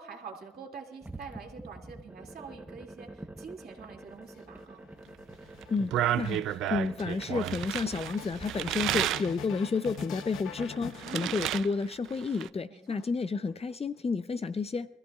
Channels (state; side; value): normal; both; correlation 0.65